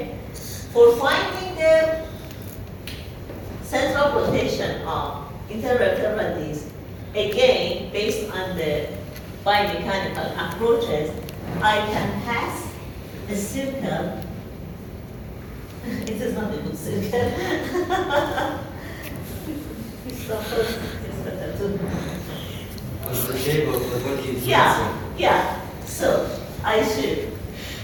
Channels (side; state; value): both; identical; correlation 1.00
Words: For finding the center of rotation of intervertebral disc, again, based on the biomechanical approaches, I can pass a circle. It is not a good circle. What's the shape of the body? Yeah, yeah. So I should